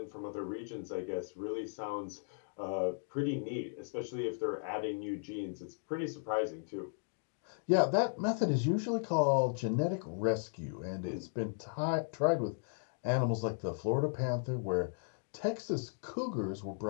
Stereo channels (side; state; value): right; silent; digital silence